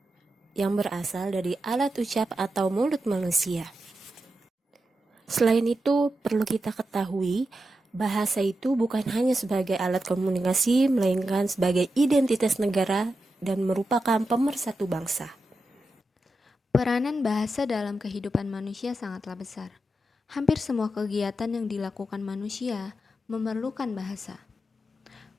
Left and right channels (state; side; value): normal; both; correlation 0.89